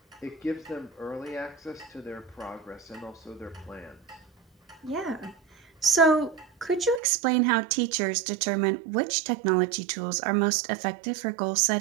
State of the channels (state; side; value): drops out; left; at 7.0 s